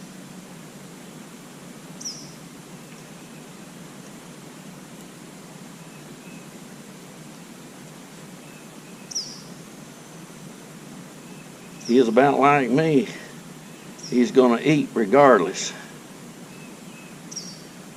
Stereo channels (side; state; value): both; identical; correlation 1.00